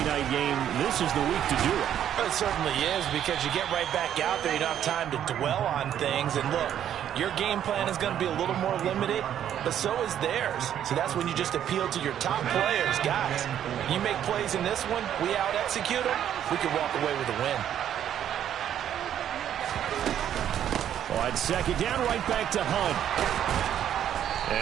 night game, this is the week to do it. It certainly is, because you get right back out there. You don't have time to dwell on things. And look, your game plan is going to be a little more limited, but so is theirs. So that's when you just appeal to your top players. Guys, you make plays in this one, we out-execute them, we can walk away with a win. On second down, right back to Hunt.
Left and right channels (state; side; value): quieter; left; 10.2 dB